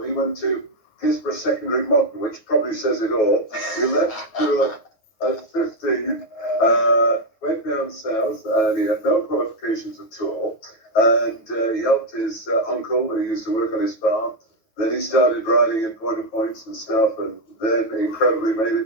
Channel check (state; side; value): late; right; 9.7 ms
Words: He went to Gisborne Secondary Modern, which probably says it all. He left school at 15, went down south, and he had no qualifications at all. And he helped his uncle, who used to work on his farm. Then he started riding in point of points and stuff, and then incredibly made